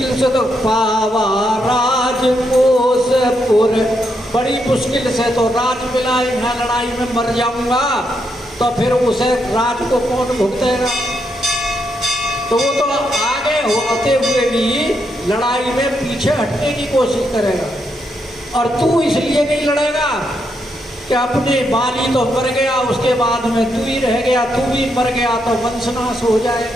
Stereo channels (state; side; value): normal; both; correlation 0.80